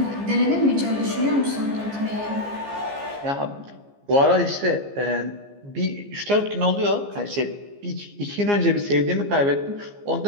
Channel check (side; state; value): left; late; 15 ms